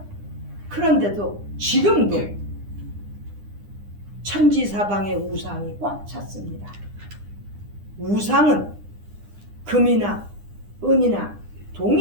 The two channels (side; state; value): left; late; 9.9 ms